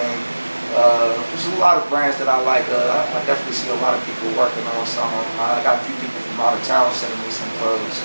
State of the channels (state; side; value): inverted; both; correlation -1.00